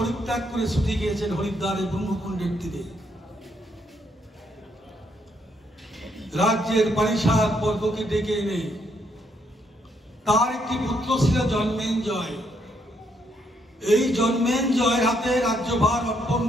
করে ছুটে গিয়েছেন হরিদ্বারের ব্রহ্মকুণ্ডের তীরে। রাজ্যের পারিষদ বর্গকে ডেকে এনে তার একটি পুত্র ছিল জন্মেঞ্জয়। এই জন্মেঞ্জয়ের হাতে রাজ্যভার অর্পণ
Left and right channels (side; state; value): both; normal; correlation 0.74